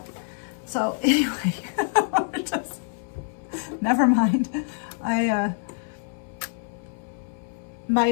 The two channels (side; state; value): right; silent; 59 dB below the other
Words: So anyway, never mind.